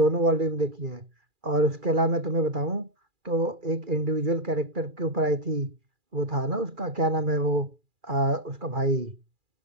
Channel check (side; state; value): left; late; 2.4 ms